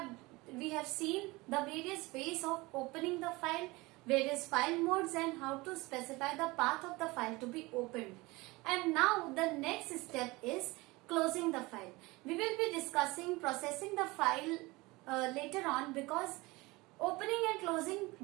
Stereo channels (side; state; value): left; quieter; 22.6 dB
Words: seen the various ways of opening the file, various file modes and how to specify the path of the file to be opened. And now the next step is closing the file. We will be discussing processing the file later on, because opening and closing